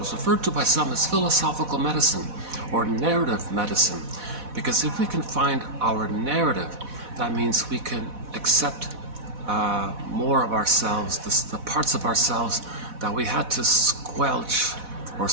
referred to by some as philosophical medicine or narrative medicine. Because if we can find our narrative, that means we can accept more of ourselves, the parts of ourselves that we had to squelch or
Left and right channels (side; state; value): left; late; 4.1 ms